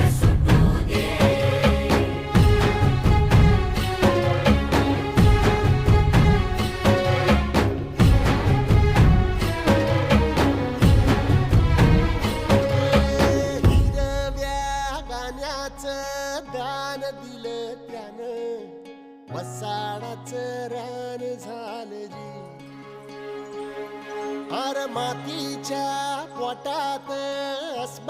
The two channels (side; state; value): both; identical; correlation 1.00